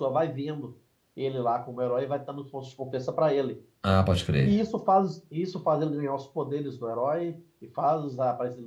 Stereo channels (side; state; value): both; identical; correlation 1.00